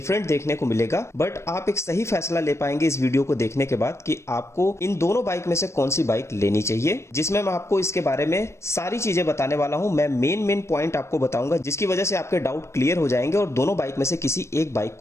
देखने को मिलेगा, बट आप एक सही फैसला ले पाएंगे इस वीडियो को देखने के बाद कि आपको इन दोनों बाइक में से कौन सी बाइक लेनी चाहिए, जिसमें मैं आपको इसके बारे में सारी चीजें बताने वाला हूं। मैं मेन पॉइंट आपको बताऊंगा जिसकी वजह से आपके डाउट क्लियर हो जाएंगे और दोनों बाइक में से किसी एक बाइक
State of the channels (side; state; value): right; late; 0.13 ms